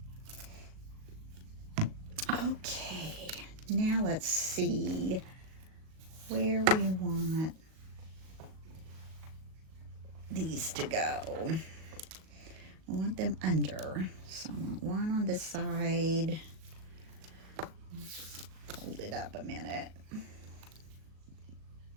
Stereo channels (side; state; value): left; late; 38 ms